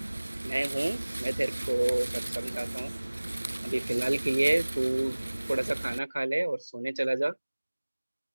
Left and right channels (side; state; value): both; inverted; correlation -1.00